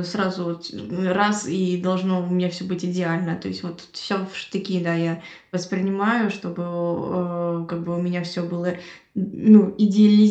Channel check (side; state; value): both; identical; correlation 1.00